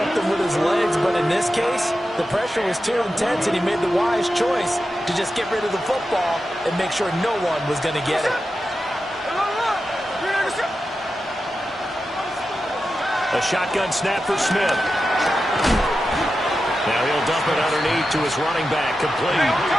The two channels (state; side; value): normal; both; correlation 0.91